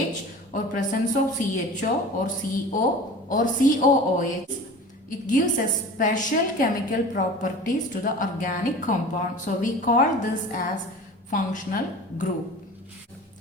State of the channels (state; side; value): normal; both; correlation 0.39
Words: or presence of CHO or CO or COOH, it gives a special chemical properties to the organic compound. So we call this as functional group.